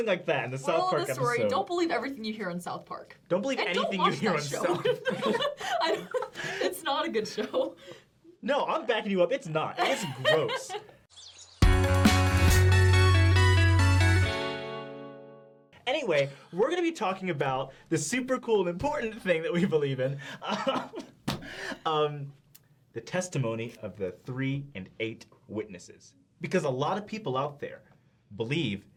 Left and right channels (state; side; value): identical; both; correlation 1.00